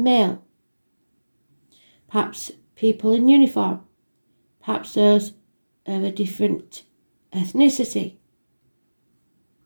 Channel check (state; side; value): inverted; both; correlation -1.00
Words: perhaps people in uniform, perhaps those of a different ethnicity.